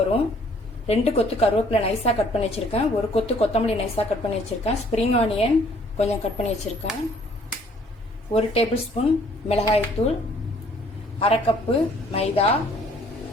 வரும். 2 கொத்து கருவேப்பிலை நைஸா கட் பண்ணி வச்சிருக்கேன். 1 கொத்து கொத்தமல்லி நைஸா கட் பண்ணி வச்சிருக்கேன். ஸ்ப்ரிங் ஆனியன் கொஞ்சம் கட் பண்ணி வச்சிருக்கேன். 1 டேபிள் ஸ்பூன் மிளகாய்த்தூள், 1/2 கப்பு மைதா,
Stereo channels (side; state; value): both; normal; correlation 0.60